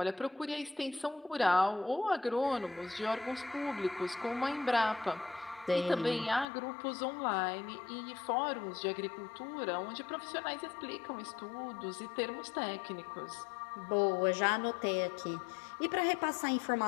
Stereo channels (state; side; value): drops out; right; at 6.5 s